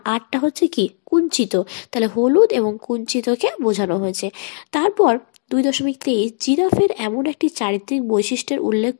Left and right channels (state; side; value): silent; right; 67 dB below the other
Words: আরটা হচ্ছে কি কুঞ্চিত, তাহলে হলুদ এবং কুঞ্চিতকে বোঝানো হয়েছে। তারপর 2.23 জিরাফের এমন একটি চারিত্রিক বৈশিষ্ট্যের উল্লেখ